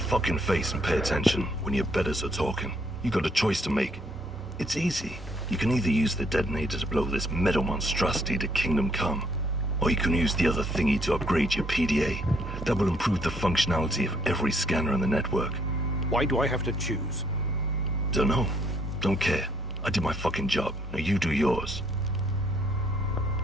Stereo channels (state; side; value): normal; both; correlation 0.67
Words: face and pay attention when your betters are talking. You got a choice to make. It's easy. You can either use the detonator to blow this metal monstrosity to Kingdom Come, or you can use the other thingy to upgrade your PDA. That will improve the functionality of every scanner in the network. Why do I have to choose? Dunno. Don't care. I did my fucking job. Now you do yours.